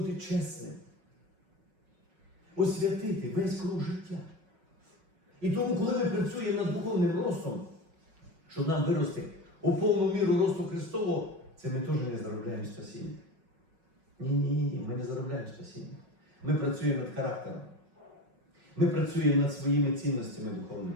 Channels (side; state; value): left; late; 6.0 ms